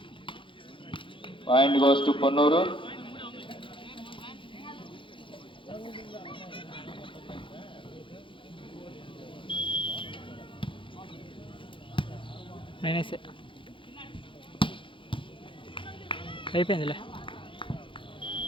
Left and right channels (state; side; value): late; right; 0.25 ms